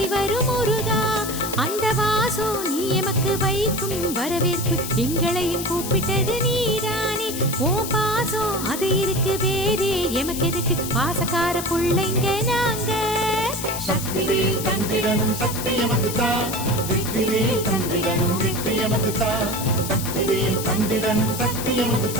வரும் முருகா. அந்த வாசம் நீ எமக்கு வைக்கும் வரவேற்பு எங்களையும் கூப்பிட்டது நீதானே. ஓ பாசம் அது இருக்கு வேறே எமக்கு எதுக்கு பாசக்கார புள்ளைங்க நாங்க. சக்திவேல் தந்திடனும் சக்தி எமக்கு தா, வெற்றிவேல் தந்திடனும் வெற்றி எமக்கு தா. சக்திவேல் தந்திடனும் சக்தி எமக்கு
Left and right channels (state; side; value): noise; left; hiss, 7 dB below the sound